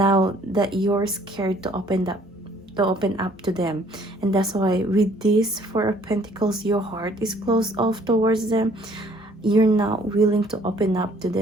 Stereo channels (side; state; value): both; normal; correlation 0.60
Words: that you're scared to open up to them. And that's why with this Four of Pentacles, your heart is closed off towards them. You're not willing to open up to